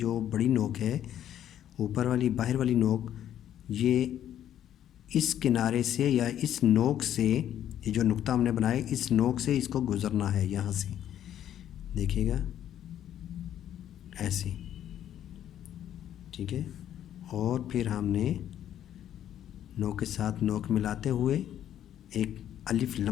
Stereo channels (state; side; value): quieter; right; 10.8 dB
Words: बड़ी नोक है, ऊपर वाली बाहर वाली नोक, ये इस किनारे से या इस नोक से, ये जो नुक्ता हमने बनाया इस नोक से इसको गुज़रना है यहाँ से, देखिएगा ऐसे, ठीक है। और फिर हमने नोक के साथ नोक मिलाते हुए एक अलिफ,